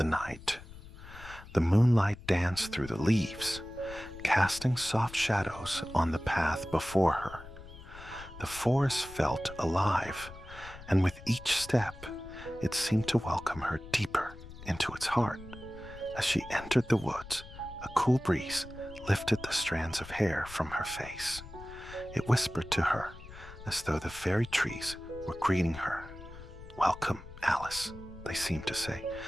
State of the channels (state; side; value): noise; left; rumble, 16 dB below the sound